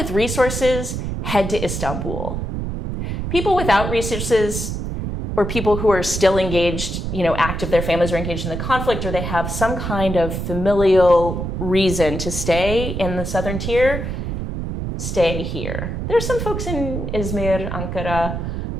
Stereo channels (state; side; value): noise; right; rumble, 4 dB below the sound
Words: resources head to Istanbul. People without resources, or people who are still engaged, active, their families are engaged in the conflict, or they have some kind of familial reason to stay in the southern tier, stay here. There's some folks in Izmir, Ankara.